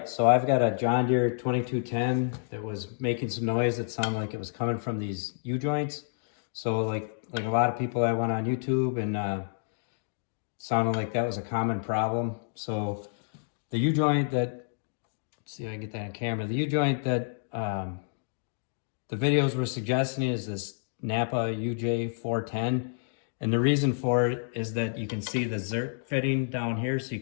so I've got a John Deere 2210 that was making some noise that sounded like it was coming from these U-joints. So like a lot of people, I went on YouTube and sounded like that was a common problem. So the U-joint that, let's see if I can get that on camera, the U-joint that the videos were suggesting is this Napa UJ410. And the reason for it is that you can see the Zerk fitting down here, so you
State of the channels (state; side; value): silent; right; digital silence